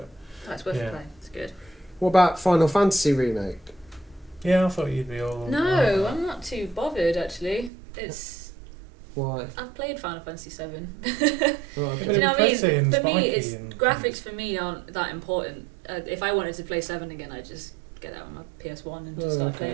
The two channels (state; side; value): drops out; left; at 7.7 s